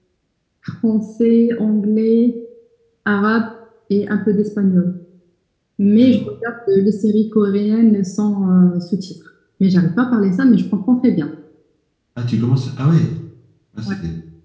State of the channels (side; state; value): both; identical; correlation 1.00